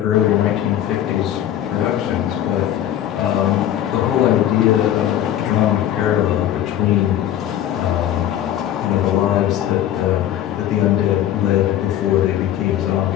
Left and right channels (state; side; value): quieter; right; 11.6 dB